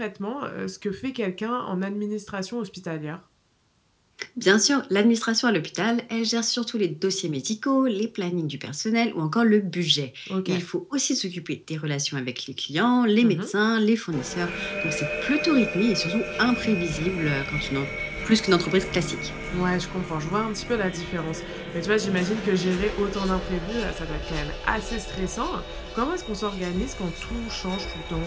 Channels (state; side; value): identical; both; correlation 1.00